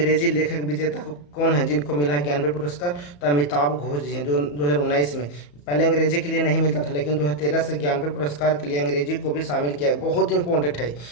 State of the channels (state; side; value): late; right; 34 ms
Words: लेखक विजेता कौन है जिनको मिला है ज्ञानपीठ पुरस्कार? तो अमिताभ घोष जी हैं, जो 2019 में। पहले अंग्रेजी के लिए नहीं मिलता था, लेकिन 2013 से ज्ञानपीठ पुरस्कार के लिए अंग्रेजी को भी शामिल किया है। बहुत इंपॉर्टेंट है,